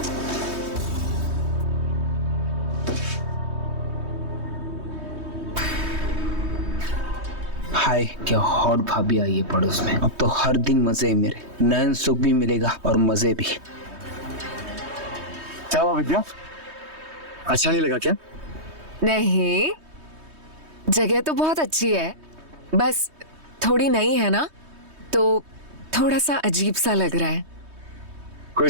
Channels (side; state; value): left; late; 3.2 ms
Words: हाय, क्या हॉट भाभी आई है पड़ोस में। अब तो हर दिन मजे है मेरे, नयन सुख भी मिलेगा और मजे भी। क्या हुआ विद्या, अच्छा नहीं लगा क्या? नहीं, जगह तो बहुत अच्छी है, बस थोड़ी नई है ना, तो थोड़ा सा अजीब सा लग रहा है।